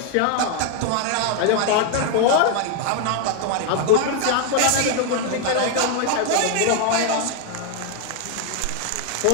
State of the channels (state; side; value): different; both; correlation 0.00